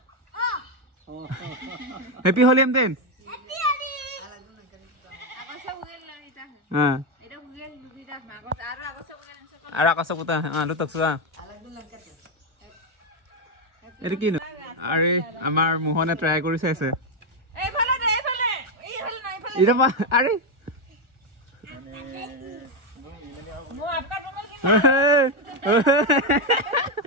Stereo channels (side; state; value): left; late; 1.4 ms